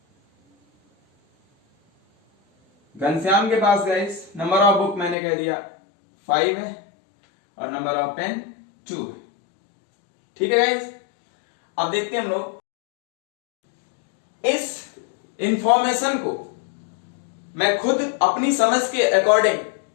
घनश्याम के पास गाइस नंबर ऑफ बुक मैंने कह दिया 5 है और नंबर ऑफ पेन 2 है, ठीक है गाइस। अब देखते हैं हम लोग इस इंफॉर्मेशन को मैं खुद अपनी समझ के अकॉर्डिंग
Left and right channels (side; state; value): right; drops out; at 5.2 s